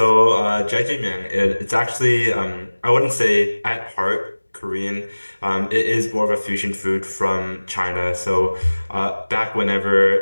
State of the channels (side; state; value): both; inverted; correlation -1.00